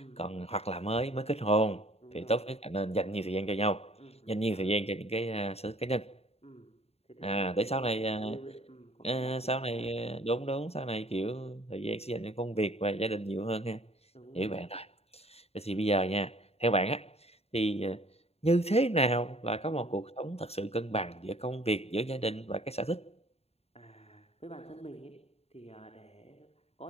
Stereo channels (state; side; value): late; right; 0.30 ms